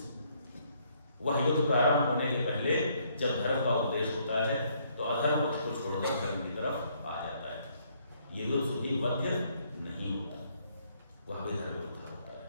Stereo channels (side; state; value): both; inverted; correlation -0.69